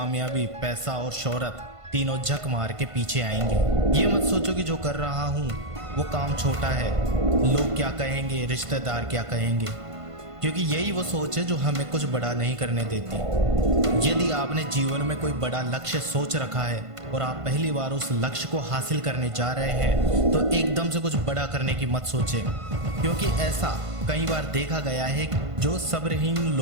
पैसा और शोहरत तीनों झक मार के पीछे आएंगे। ये मत सोचो कि जो कर रहा हूँ वो काम छोटा है, लोग क्या कहेंगे, रिश्तेदार क्या कहेंगे, क्योंकि यही वो सोच है जो हमें कुछ बड़ा नहीं करने देती। यदि आपने जीवन में कोई बड़ा लक्ष्य सोच रखा है और आप पहली बार उस लक्ष्य को हासिल करने जा रहे हैं तो एकदम से कुछ बड़ा करने की मत सोचें, क्योंकि ऐसा कई बार देखा गया है जो सब्रहीन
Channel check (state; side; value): late; left; 1.5 ms